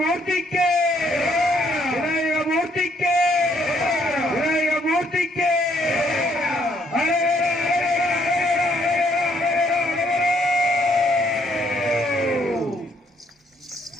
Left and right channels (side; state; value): both; normal; correlation 0.69